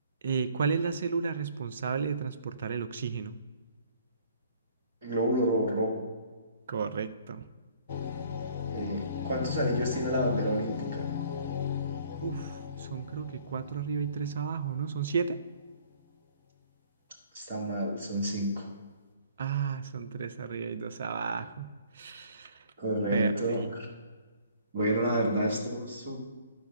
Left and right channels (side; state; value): both; inverted; correlation -0.57